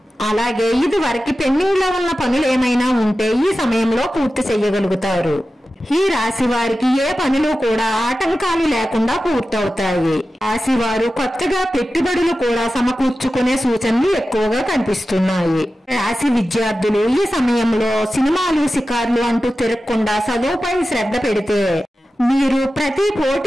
అలాగే ఇది వరకు పెండింగ్ లో ఉన్న పనులు ఏమైనా ఉంటే ఈ సమయంలో పూర్తి చేయగలుగుతారు। ఈ రాశి వారికి ఏ పనులు కూడా ఆటంకాలు లేకుండా పూర్తవుతాయి। రాశి వారు కొత్తగా పెట్టుబడులు కూడా సమకూర్చుకునే సూచనలు ఎక్కువగా కనిపిస్తున్నాయి। రాశి విద్యార్థులు ఈ సమయంలో సినిమాలు షికార్లు అంటూ తిరగకుండా చదువుపై శ్రద్ధ పెడితే మీరు ప్రతి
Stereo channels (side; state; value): both; normal; correlation 0.94